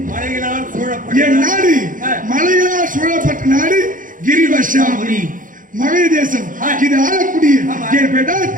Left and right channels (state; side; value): late; left; 0.39 ms